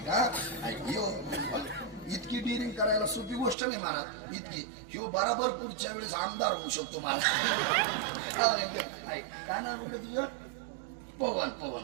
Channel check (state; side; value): drops out; left; at 3.6 s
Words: यो इतकी डिरिंग करायला सोपी गोष्ट नाही महाराज. इतकी ह्यो बराबर पुढच्या वेळेस आमदार होऊ शकतो महाराज. काय नाव होतं तुझं? पवन.